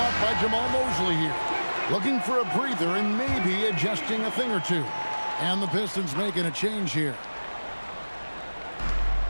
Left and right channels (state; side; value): inverted; both; correlation -1.00